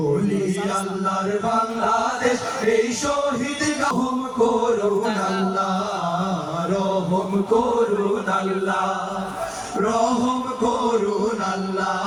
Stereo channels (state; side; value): identical; both; correlation 1.00